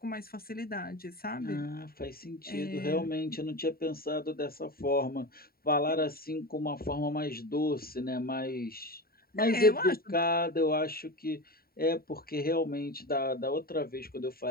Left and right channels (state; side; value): late; right; 0.43 ms